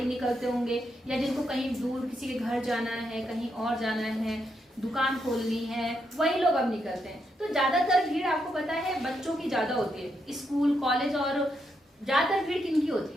निकलते होंगे, या जिनको कहीं दूर किसी के घर जाना है, कहीं और जाना है, दुकान खोलनी है, वही लोग अब निकलते हैं। तो ज्यादातर भीड़ आपको पता है बच्चों की ज्यादा होती है, स्कूल कॉलेज, और ज्यादातर भीड़ किनकी होती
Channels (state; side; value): normal; both; correlation 0.80